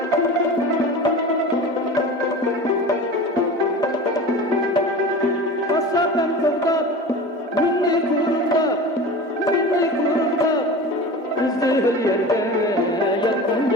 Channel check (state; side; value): normal; both; correlation 0.34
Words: Asabem kurdap, minni kurdap, üzdüğül yerde yatan